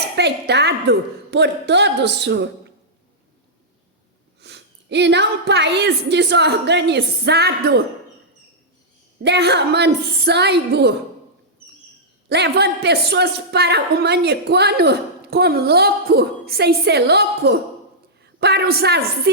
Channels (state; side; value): normal; both; correlation -0.10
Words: por todos, e não um país desorganizado, derramando sangue, levando pessoas para o manicômio como louco, sem ser louco, para os